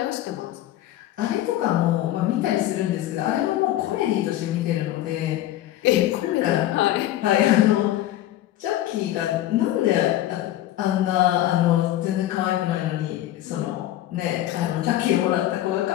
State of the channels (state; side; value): quieter; right; 13.8 dB